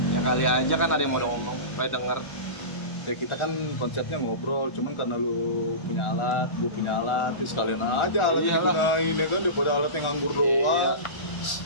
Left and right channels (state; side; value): late; right; 1.4 ms